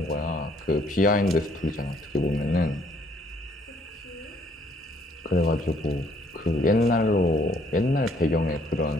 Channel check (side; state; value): both; normal; correlation 0.65